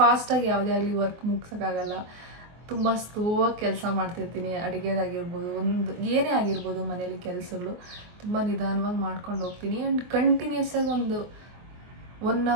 ಯಾವುದೇ ಆಗಲಿ ವರ್ಕ್ ಮುಗ್ಸೋಕ್ಕಾಗಲ್ಲ. ತುಂಬ ಸ್ಲೋವಾಗಿ ಕೆಲಸ ಮಾಡ್ತಿರ್ತೀನಿ. ಅಡುಗೆದಾಗಿರ್ಬೋದು, ಏನೇ ಆಗಿರ್ಬೋದು ಮನೇಲಿ ಕೆಲಸಗಳು ತುಂಬ ನಿಧಾನವಾಗಿ ಮಾಡ್ಕೊಂಡು ಹೋಗ್ತೀನಿ. ಆ್ಯಂಡ್ ಕಂಟಿನ್ಯೂಸ್ ಆಗಿ ಒಂದು 1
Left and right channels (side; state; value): left; late; 24 ms